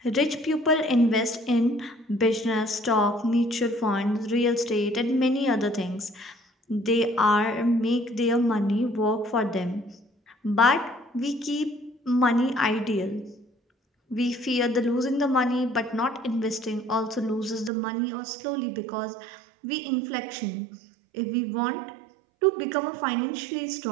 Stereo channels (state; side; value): drops out; left; at 17.7 s